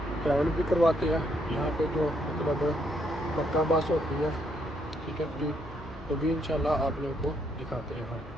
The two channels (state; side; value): normal; both; correlation 0.73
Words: ट्रैवल भी करवाते हैं यहाँ पे जो मतलब मक्का बस होती है, ठीक है जी। तो भी इंशाल्लाह आप लोगों को दिखाते हैं हम।